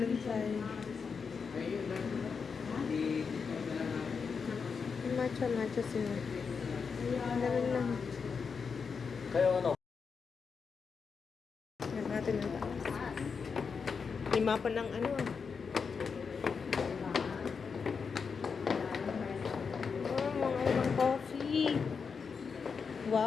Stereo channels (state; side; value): quieter; right; 5.6 dB